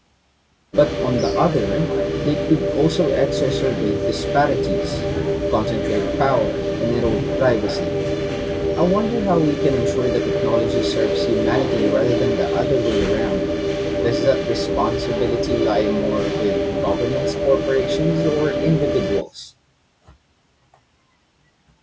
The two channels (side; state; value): both; identical; correlation 1.00